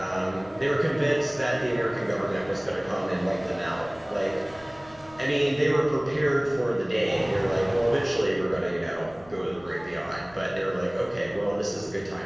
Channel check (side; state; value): left; noise; rumble, 24 dB below the sound